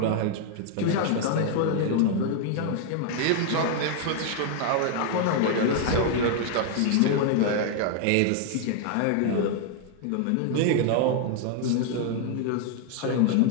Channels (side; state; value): both; different; correlation 0.00